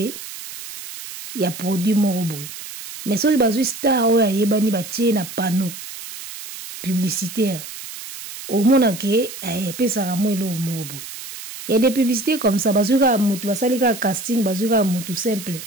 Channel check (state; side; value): noise; right; hiss, 12 dB below the sound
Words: ya produit moko boye mais soki bazwi star oyo ayebani batie na panneau publicitaire omona ke epesaka mo eloko moko boye. Il y a des publicités comme ça bazwi kaka mutu basali kaka casting bazwi kaka mutu simple